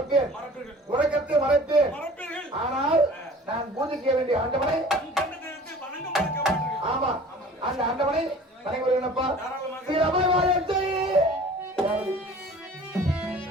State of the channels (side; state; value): both; normal; correlation 0.45